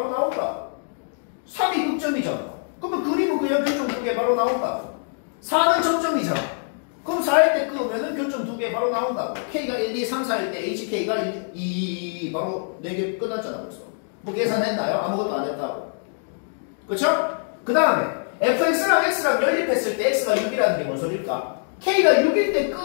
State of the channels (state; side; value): silent; right; 63 dB below the other